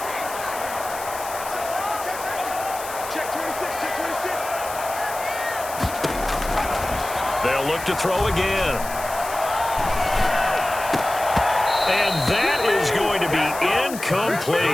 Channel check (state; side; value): noise; left; hiss, 12 dB below the sound